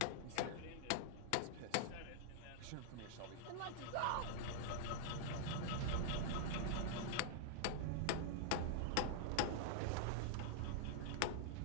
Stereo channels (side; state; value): both; different; correlation -0.01